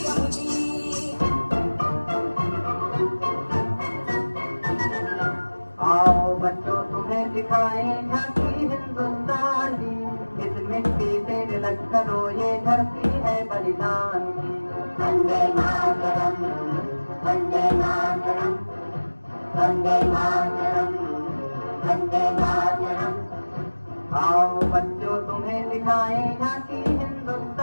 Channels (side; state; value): both; inverted; correlation -1.00